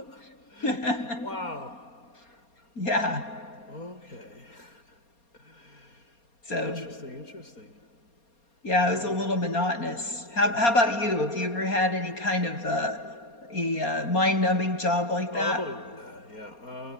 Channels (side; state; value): right; late; 4.3 ms